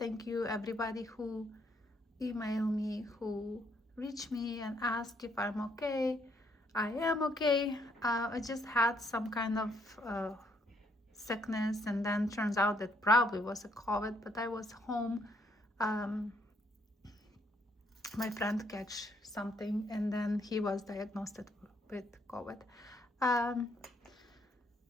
you everybody who emailed me, who reached me and asked if I'm okay. I am okay. I just had some kind of sickness, and then turns out that probably was a COVID, but I was home. Um, my friend catch something, and then he was diagnosed with COVID. Um,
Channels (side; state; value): both; normal; correlation 0.70